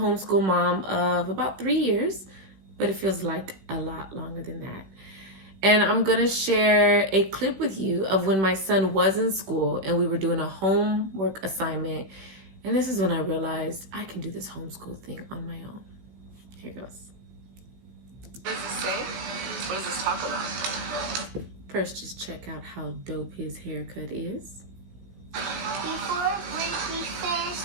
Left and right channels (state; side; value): late; left; 16 ms